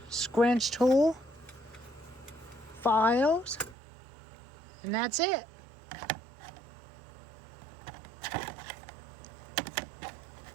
Scrunch tool. Files. And that's it.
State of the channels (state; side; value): drops out; left; at 3.8 s